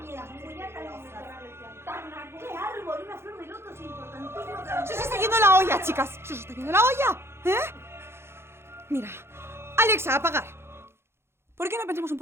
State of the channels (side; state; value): left; late; 0.12 ms